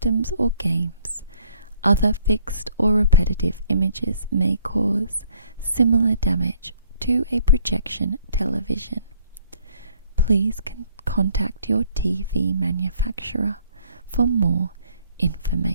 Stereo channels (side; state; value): both; inverted; correlation -0.63